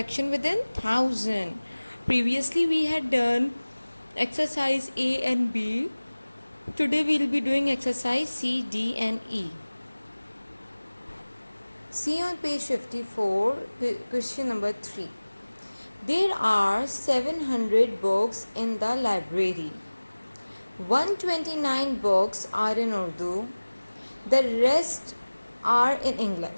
within thousand. Previously we had done exercise A and B. Today we'll be doing exercise C, D and E. See on page 54, question number 3. There are 700 books in the library. 129 books are in Urdu. The rest are in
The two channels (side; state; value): both; inverted; correlation -1.00